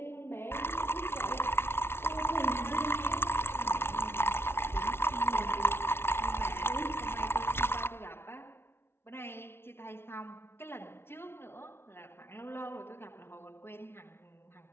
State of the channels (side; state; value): right; late; 0.12 ms